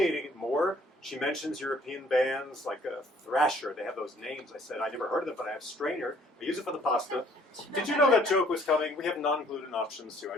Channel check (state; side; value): normal; both; correlation 0.60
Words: it more. She mentions European bands like Thrasher. They have those names. I said, I never heard of them, but I have Strainer. I use it for the pasta. Did you know that joke was coming? We have non-gluten options too. I